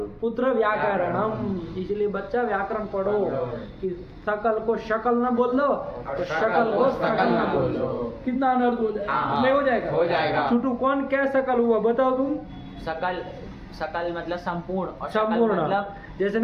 पुत्र व्याकरणम, इसलिए बच्चा व्याकरण पढ़ो कि सकल को शकल न बोल दो, तो शकल को सकल न बोल दो, कितना अनर्थ हो जाएगा, नहीं हो जाएगा, हो जाएगा। छोटू कौन क्या सकल हुआ बताओ तुम, सकल, सकल मतलब संपूर्ण, और शकल संपूर्ण मतलब जैसे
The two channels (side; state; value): both; identical; correlation 1.00